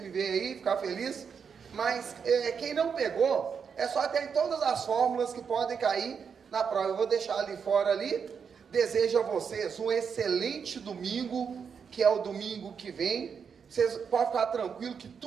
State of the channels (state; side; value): quieter; left; 6.5 dB